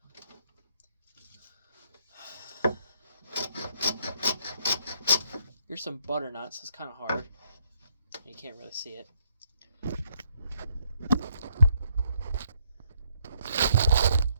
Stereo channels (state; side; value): inverted; both; correlation -0.71